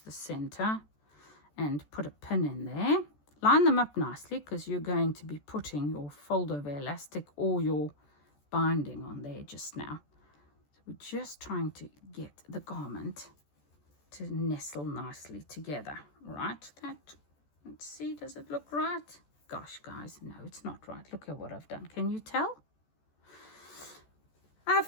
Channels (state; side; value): late; right; 14 ms